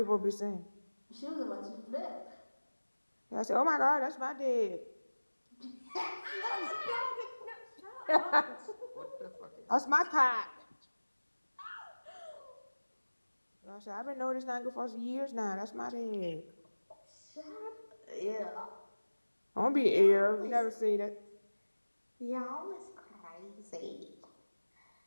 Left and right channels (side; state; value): both; inverted; correlation -1.00